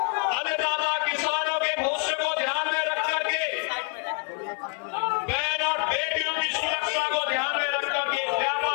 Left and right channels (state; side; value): quieter; right; 35.8 dB